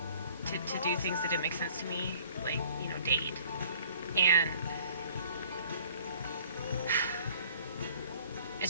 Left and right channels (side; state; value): both; inverted; correlation -0.54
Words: to do things that didn't make sense to me, like, date. And